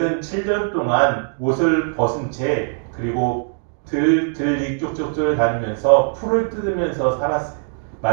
7년 동안 옷을 벗은 채 그리고 들이 쪽쪽을 다니면서 풀을 뜯으면서 살았어요.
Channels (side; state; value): left; silent; digital silence